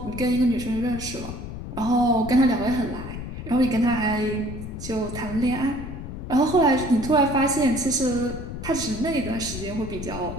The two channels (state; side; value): noise; left; rumble, 9 dB below the sound